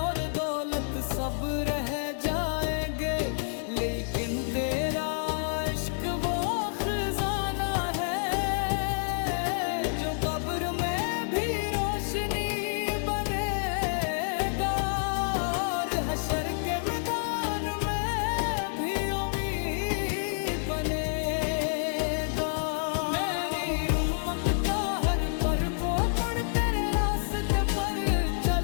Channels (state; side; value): silent; right; digital silence